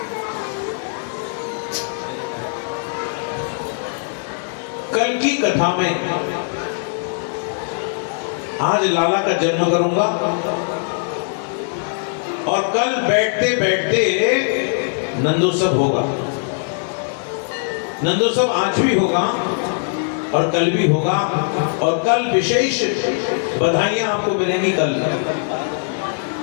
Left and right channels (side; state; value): right; silent; digital silence